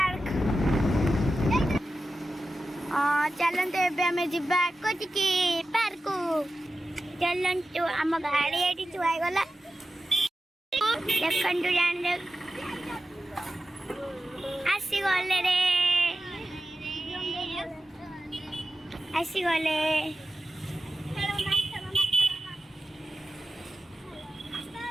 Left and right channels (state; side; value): normal; both; correlation 0.93